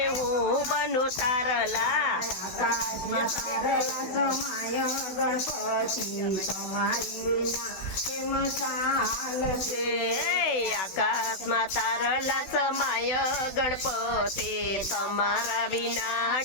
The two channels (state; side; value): late; right; 16 ms